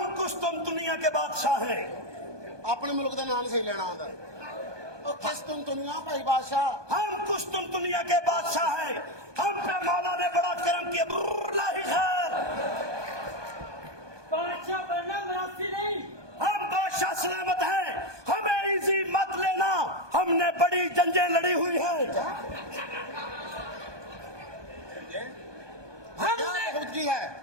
कुछ तुम दुनिया के बादशाह हैं। अपने मुल्क का नाम सही लेना आंदा। ओ किस तुम दुनिया भाई बादशाह। हम कुछ तुम दुनिया के बादशाह हैं। हम पे मौला ने बड़ा करम किया। लाही खैर, बादशाह बनना मुनासिब नहीं। हम बादशाह सलामत हैं। हमें इजी मत लेना, हमने बड़ी जंगें लड़ी हुई हैं। हमने खुद की है,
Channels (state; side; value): late; left; 1.2 ms